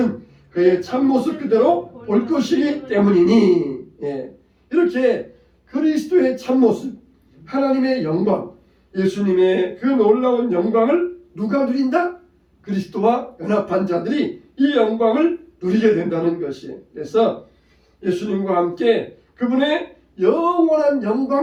그의 참모습 그대로 볼 것이기 때문이니. 이렇게 그리스도의 참모습, 하나님의 영광, 예수님의 그 놀라운 영광을 누가 누린다? 그리스도와 연합한 자들이 이 영광을 누리게 된다는 것이에요. 그래서 예수님과 함께 그분의 영원한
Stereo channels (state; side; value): identical; both; correlation 1.00